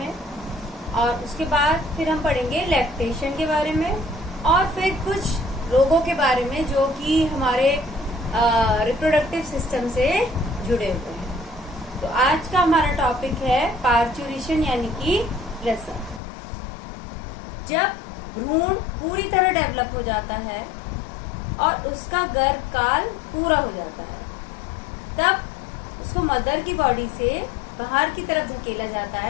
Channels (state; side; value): drops out; right; at 16.2 s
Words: और उसके बाद फिर हम पढ़ेंगे लैक्टेशन के बारे में और फिर कुछ रोगों के बारे में जो कि हमारे रिप्रोडक्टिव सिस्टम से जुड़े हुए हैं। तो आज का हमारा टॉपिक है पार्थ्यूरेशन यानी कि प्रसव। जब भ्रूण पूरी तरह डेवलप हो जाता है और उसका गर्भकाल पूरा हो जाता है, तब उसको मदर की बॉडी से बाहर की तरफ धकेला जाता